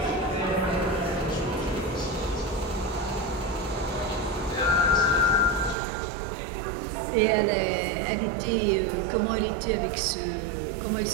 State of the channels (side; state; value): left; drops out; at 5.8 s